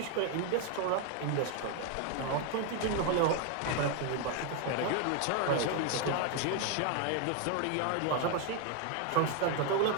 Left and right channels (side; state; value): both; different; correlation 0.01